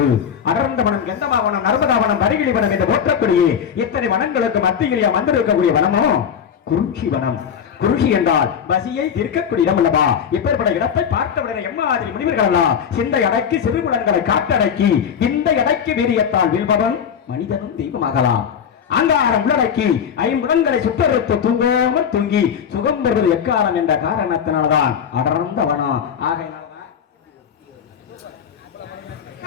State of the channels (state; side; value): quieter; right; 7.8 dB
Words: அடர்ந்த வனம், கெந்தமாவனம், நர்மதாவனம், பரிகிழி வனம் என்று போற்றக்கூடிய இத்தனை வனங்களுக்கு மத்தியிலே வந்திருக்கக்கூடிய வனமோ குறிஞ்சி வனம். குறிஞ்சி என்றால் பசியை தீர்க்கக்கூடிய இடம் அல்லவா? இப்பேற்பட்ட இடத்தை பார்த்தவுடனே எம்மாதிரி முனிவர்கள் சிந்தை அடக்கி சிறுகுலன்களை காட்டடக்கி இந்த எடைக்கு வீரியத்தால் வீழ்பவன் மனிதனும் தெய்வமாகலாம். அங்காரம் உள்ளடக்கி ஐம்புலன்களை சுட்டறுத்து தூங்காமல் தூங்கி சுகம் பெறுவது எக்காலம் என்ற காரணத்தினால்தான் அடர்ந்த வனம். ஆகையினால்தான்